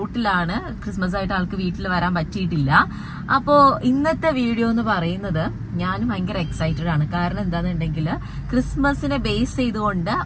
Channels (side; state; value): both; identical; correlation 1.00